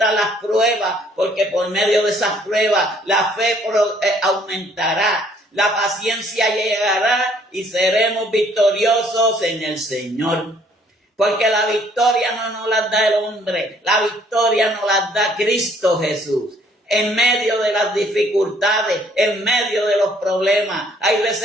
las pruebas, porque por medio de esas pruebas la fe aumentará. La paciencia llegará y seremos victoriosos en el Señor. Porque la victoria no nos la da el hombre, la victoria nos la da Cristo Jesús. En medio de las dificultades, en medio de los problemas. Hay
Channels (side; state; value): both; normal; correlation 0.62